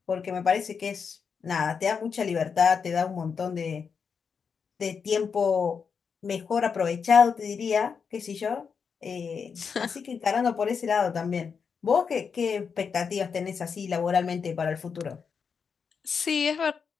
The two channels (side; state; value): right; quieter; 6.1 dB